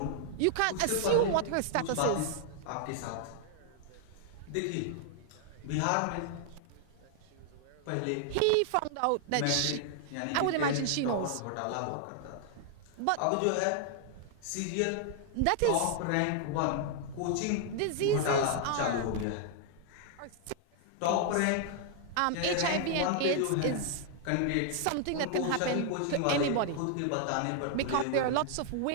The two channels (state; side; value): different; both; correlation 0.00